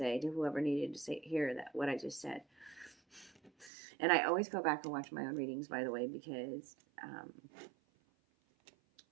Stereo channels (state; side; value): drops out; left; at 3.7 s